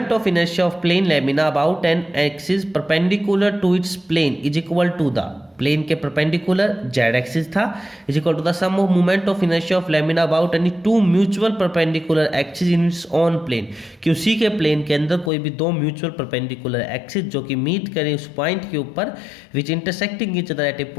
of inertia of plane lamina about an axis perpendicular to its plane is equal to the plane के परपेंडिकुलर जेड एक्सिस था is equal to the sum of movement of inertia of lamina about any two mutual perpendicular axis in its on plane, कि उसी के plane के अंदर कोई भी दो म्यूचुअल परपेंडिकुलर एक्सिस जो कि मीट करें उस पॉइंट के ऊपर which intersecting each other at a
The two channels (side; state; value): right; drops out; at 15.3 s